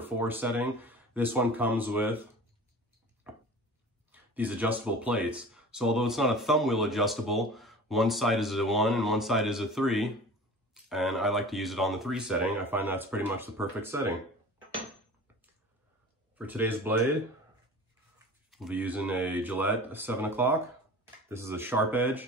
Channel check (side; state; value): both; normal; correlation 0.39